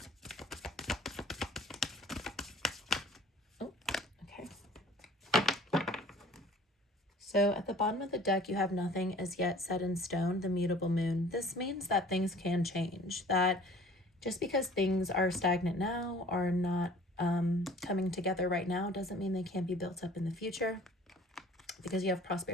Oh, okay. So at the bottom of the deck, you have nothing as yet set in stone, the mutable moon. This means that things can change, that just because things are stagnant now, are not coming together right now, doesn't mean they can't be built up in the future, because you have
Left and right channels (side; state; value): both; normal; correlation 0.49